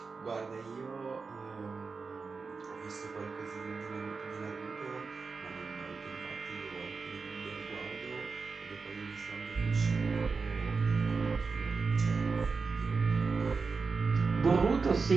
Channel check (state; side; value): quieter; left; 4.6 dB